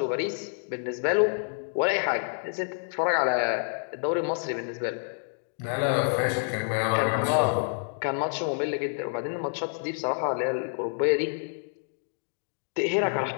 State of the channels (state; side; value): silent; right; digital silence